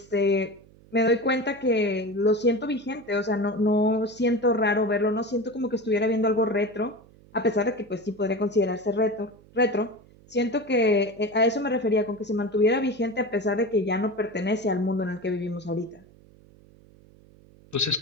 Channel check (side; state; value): right; noise; hum, 26 dB below the sound